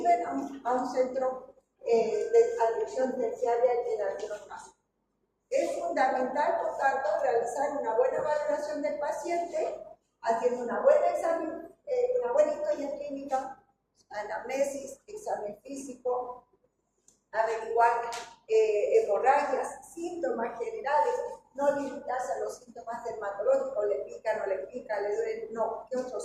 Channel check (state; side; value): identical; both; correlation 1.00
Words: a un centro de atención terciaria en algunos casos. Es fundamental, por tanto, realizar una buena valoración del paciente, haciendo una buena examen, una buena historia clínica, anamnesis, examen físico, averiguar hemorragias, síntomas generales, no limitarse a los síntomas dermatológicos, le pica, no le pica, le duele, no, ¿qué